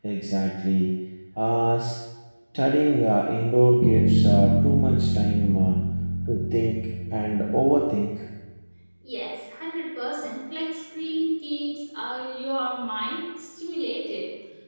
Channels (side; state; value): both; inverted; correlation -1.00